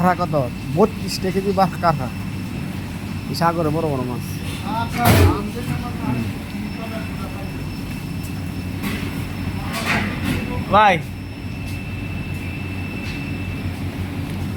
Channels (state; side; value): identical; both; correlation 1.00